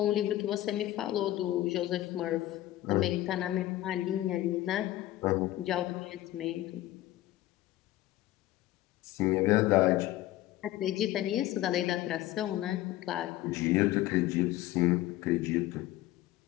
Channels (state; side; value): quieter; right; 15.4 dB